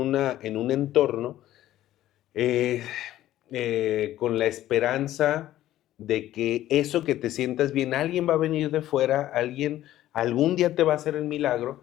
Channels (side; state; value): right; quieter; 13.8 dB